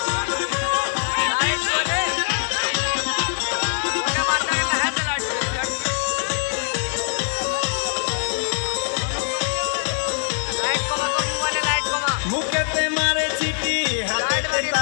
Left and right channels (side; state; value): right; silent; 64 dB below the other